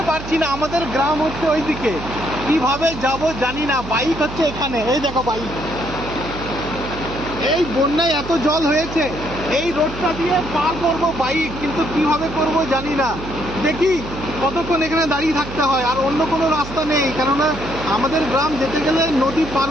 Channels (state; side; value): noise; right; hum, 10 dB below the sound